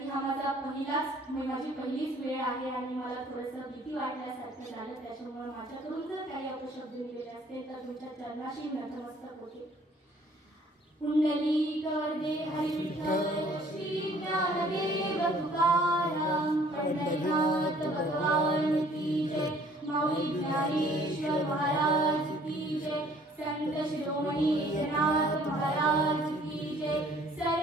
हा माझी पहिलीच वेळ आहे आणि मला थोडंसं भीती वाटल्यासारखं झालं. त्याच्यामुळे माझ्याकडून जर काही अपशब्द निघाले असतील तर तुमच्या चरणाशी नतमस्तक होते. कुंडली करदे हरी विठ्ठल श्री ज्ञानदेव तुकाराम, पंढरीनाथ भगवान की जय, माऊली ज्ञानेश्वर महाराज की जय, संत शिरोमणी एकनाथ महाराज की जय,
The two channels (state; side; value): normal; both; correlation 0.57